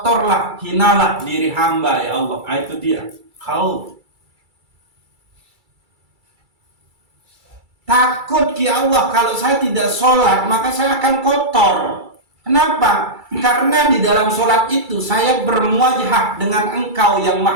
hinalah diri hamba ya Allah. Itu dia. Khauf. Takut ya Allah, kalau saya tidak sholat maka saya akan kotor. Kenapa? Karena di dalam sholat itu saya bermuajahah dengan engkau yang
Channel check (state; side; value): late; left; 2.3 ms